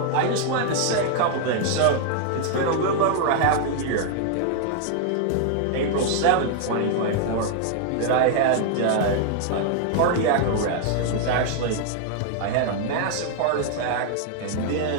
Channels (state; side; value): different; both; correlation 0.00